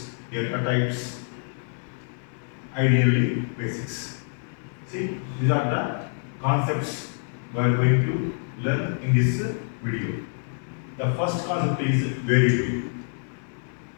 data types, ideally basics. See, these are the concepts we are going to learn in this video. The first concept is variable.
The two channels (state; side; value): silent; right; 61 dB below the other